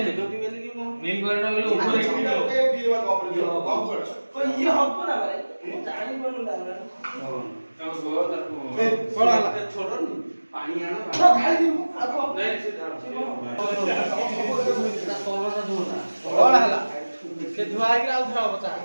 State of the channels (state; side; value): inverted; both; correlation -1.00